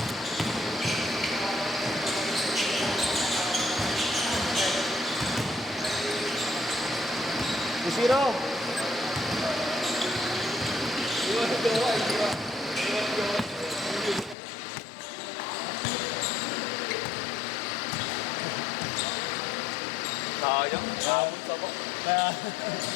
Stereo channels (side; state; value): right; drops out; at 14.4 s